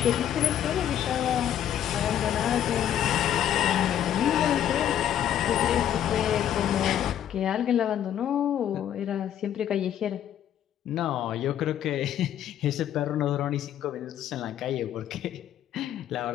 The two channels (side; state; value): right; quieter; 10.6 dB